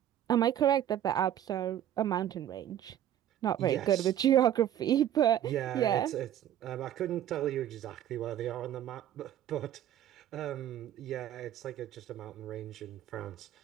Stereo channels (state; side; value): quieter; left; 11.1 dB